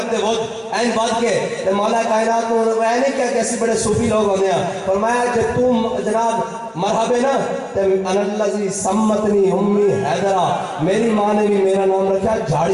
ود این بات کے تو مولا کائنات کو وہ نہیں کیا کہ ایسی بڑے صوفی لوگ ہونے ہیں، فرمایا جب تم جناب مرحبا نا تو انا الذی سمتنی امی حیدرہ، میری ماں نے بھی میرا نام رکھا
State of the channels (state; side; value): identical; both; correlation 1.00